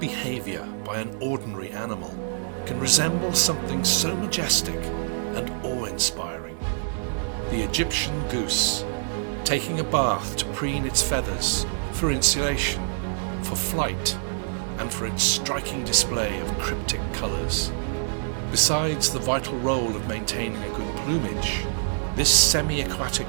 by an ordinary animal can resemble something so majestic and awe-inspiring. The Egyptian goose, taking a bath to preen its feathers for insulation, for flight, and for its striking display of cryptic colours. Besides the vital role of maintaining a good plumage, this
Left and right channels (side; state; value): left; silent; 56 dB below the other